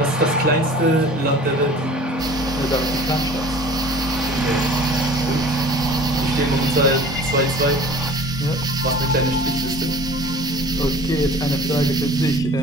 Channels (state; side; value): normal; both; correlation 0.44